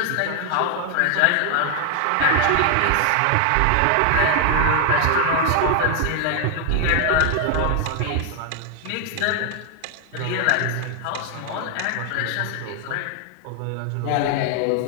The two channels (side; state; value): both; different; correlation 0.00